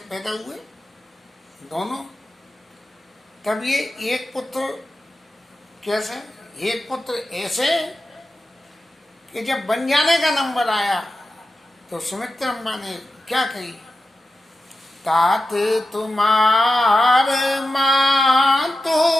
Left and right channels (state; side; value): normal; both; correlation 0.92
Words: पैदा हुए दोनों। तब ये एक पुत्र कैसे, एक पुत्र ऐसे कि जब बन जाने का नंबर आया तो सुमित्रा अम्मा ने क्या कही, तात तुम्हार मां तो